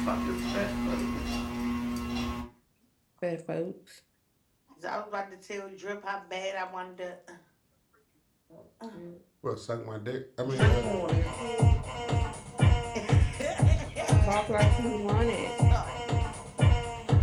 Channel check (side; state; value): both; identical; correlation 1.00